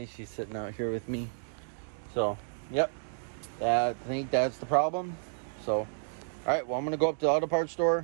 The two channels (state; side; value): silent; left; digital silence